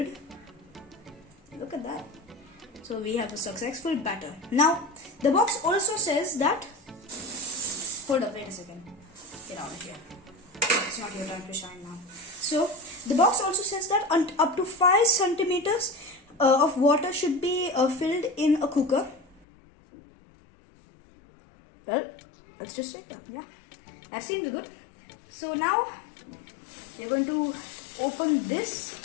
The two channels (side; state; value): right; drops out; at 19.5 s